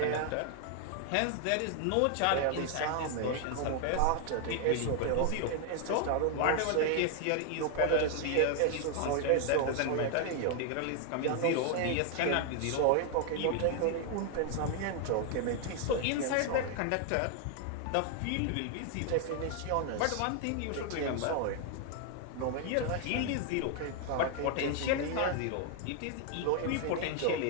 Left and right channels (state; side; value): different; both; correlation 0.00